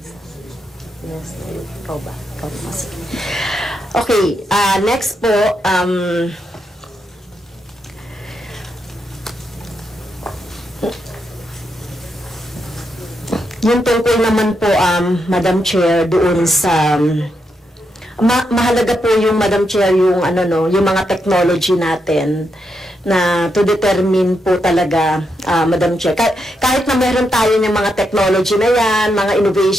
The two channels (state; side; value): normal; both; correlation 0.82